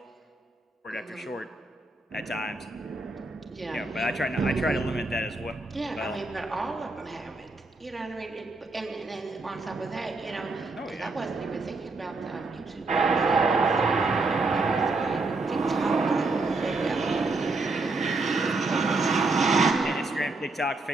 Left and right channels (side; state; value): left; quieter; 3.4 dB